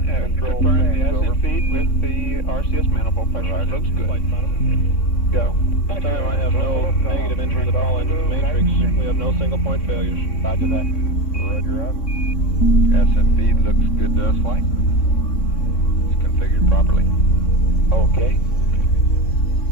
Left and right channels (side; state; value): right; late; 3.6 ms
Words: control Confirm the stands, over. ascent feed with the RCS manifold pressure. Roger. Looks good. Go. This time I have no negative entries at all into the matrix. We have no single point failures. Roger that. Roger up. Ascent feed looks good to us, flight. It's configured properly. Okay.